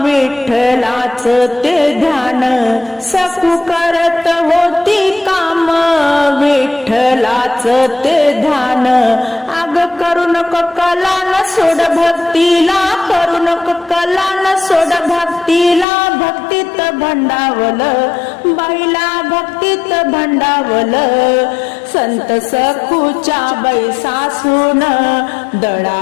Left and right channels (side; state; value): right; drops out; at 15.9 s